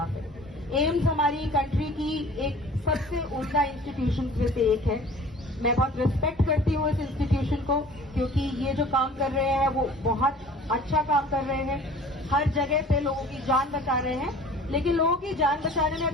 है। एम्स हमारी कंट्री की एक सबसे उम्दा इंस्टीट्यूशन में से एक है। मैं बहुत रिस्पेक्ट करती हूँ इस इंस्टीट्यूशन को, क्योंकि ये जो काम कर रहे हैं वो बहुत अच्छा काम कर रहे हैं। हर जगह पे लोगों की जान बचा रहे हैं, लेकिन लोगों की जान बचाने में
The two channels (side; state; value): both; normal; correlation 0.47